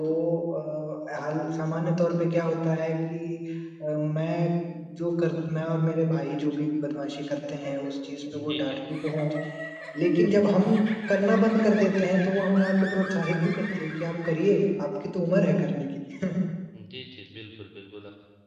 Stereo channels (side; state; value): both; identical; correlation 1.00